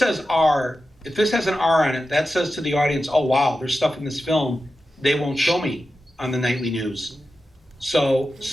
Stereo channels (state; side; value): normal; both; correlation 0.92